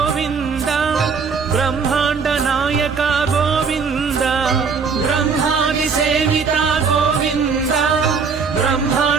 బ్రహ్మాండ నాయక గోవింద బ్రహ్మాది సేవిత గోవింద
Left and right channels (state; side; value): quieter; left; 5.5 dB